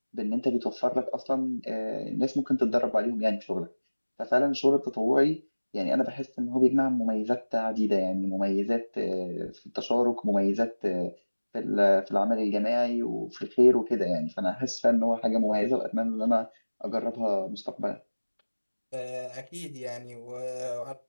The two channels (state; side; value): inverted; both; correlation -1.00